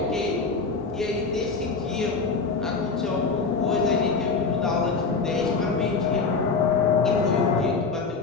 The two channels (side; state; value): right; quieter; 4.6 dB